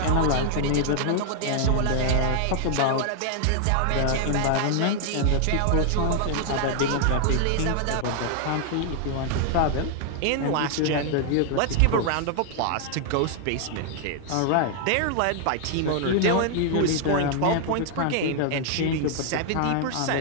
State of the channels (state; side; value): different; both; correlation 0.00